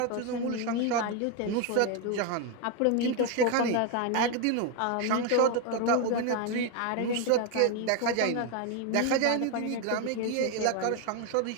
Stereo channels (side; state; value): both; different; correlation 0.01